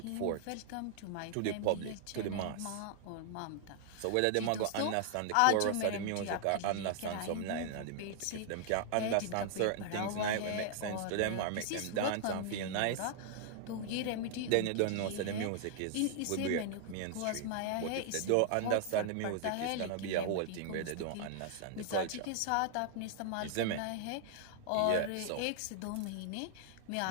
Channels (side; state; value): both; different; correlation 0.00